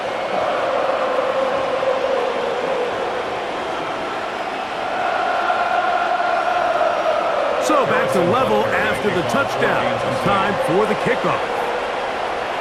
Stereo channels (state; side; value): identical; both; correlation 1.00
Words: So back to level after the touchdown. Time for the kickoff.